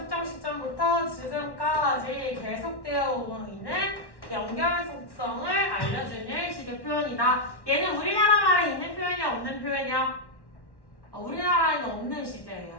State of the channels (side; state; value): right; late; 1.1 ms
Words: 시점부터 지금까지 계속되어 오고 있는 연결 속성을 알려주는 식의 표현이다. 얘는 우리나라 말에 있는 표현이야, 없는 표현이야? 우리나라에는 없는